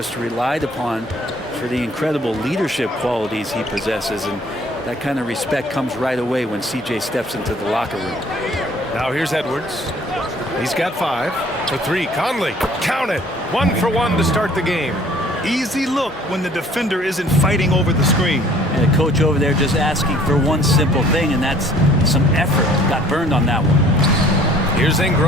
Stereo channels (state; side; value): normal; both; correlation 0.55